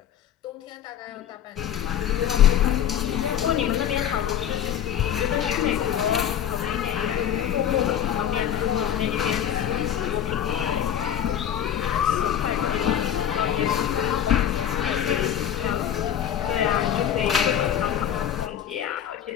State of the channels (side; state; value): right; quieter; 10.0 dB